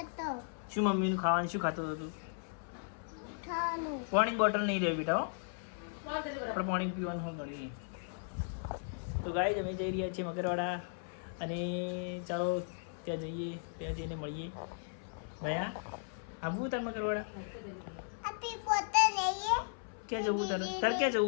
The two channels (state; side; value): silent; right; 54 dB below the other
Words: શું મમ્મીનું ખાવાનું શું ખાતો હતો તું ખાવાનું પાણી બોટલ નહીં રહે બેટા હો આપણે પાણી પીવાનું હોય ઘણી તો ગાય અમે જઈ રહ્યા છીએ મગરવાડા અને ચાલો ત્યાં જઈએ ત્યાં જઈને મળીએ ભયા આવવું તાર મગરવાડા ક્યાં જવું તારે ક્યાં